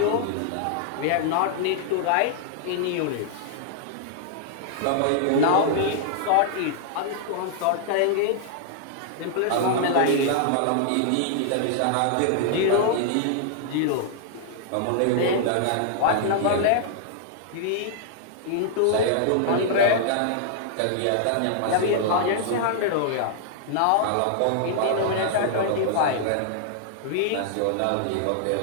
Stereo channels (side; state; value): both; different; correlation -0.01